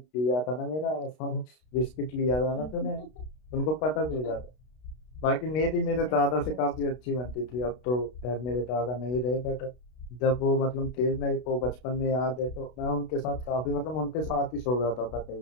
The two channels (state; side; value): late; right; 32 ms